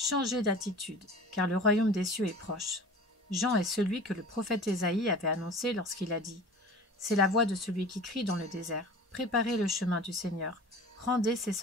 d'attitude, car le royaume des cieux est proche. Jean est celui que le prophète Ésaïe avait annoncé lorsqu'il a dit : C'est la voix de celui qui crie dans le désert. Préparez le chemin du Seigneur, rendez ses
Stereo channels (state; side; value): normal; both; correlation 0.40